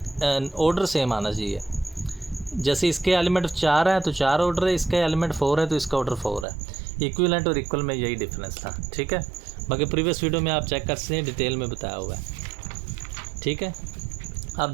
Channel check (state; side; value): drops out; left; at 6.5 s